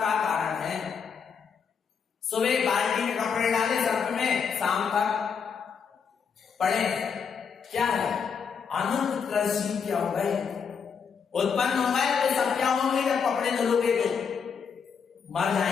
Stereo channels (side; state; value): right; quieter; 6.4 dB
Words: कारण है। सुबह बाल्टी में कपड़े डाले सर्फ में, शाम तक पड़े, क्या है? अनंत कृषि क्या हो गए, उत्पन्न हो गए, तो सब क्या होंगे? जब कपड़े धुलोगे तो मर